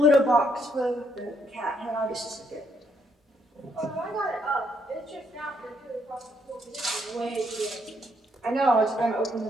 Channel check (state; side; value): normal; both; correlation 0.73